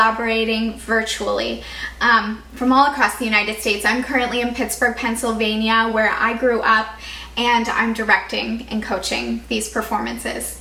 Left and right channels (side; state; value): both; identical; correlation 1.00